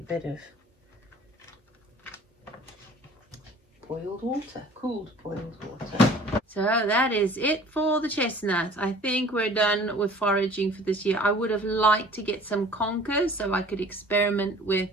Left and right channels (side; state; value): both; normal; correlation 0.49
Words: of boiled water, cooled boiled water. So that is it for the chestnuts. I think we're done with foraging for this year. I would have liked to get some conkers so I could experiment with